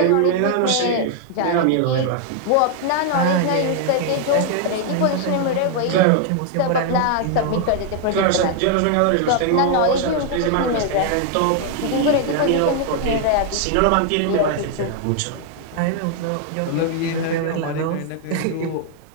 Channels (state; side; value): different; both; correlation 0.00